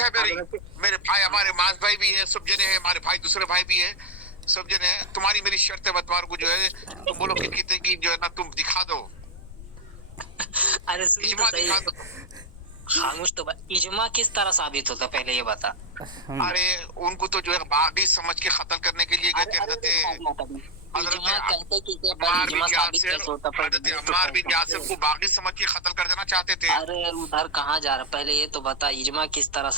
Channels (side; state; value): left; noise; rumble, 16 dB below the sound